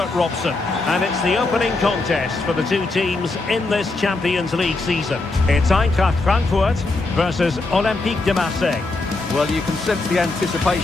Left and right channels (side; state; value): right; quieter; 3.3 dB